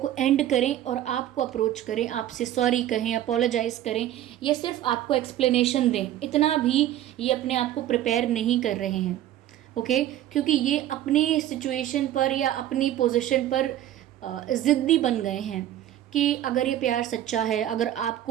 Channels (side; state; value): left; quieter; 12.4 dB